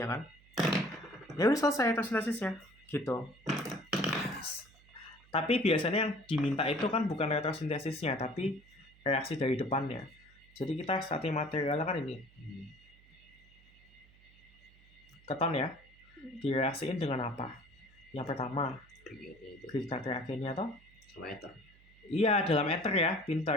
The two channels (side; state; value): right; noise; hum, 27 dB below the sound